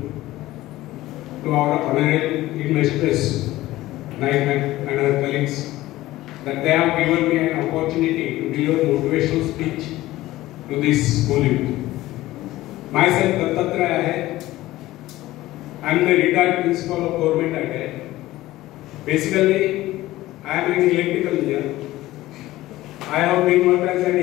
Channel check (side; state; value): right; quieter; 16.7 dB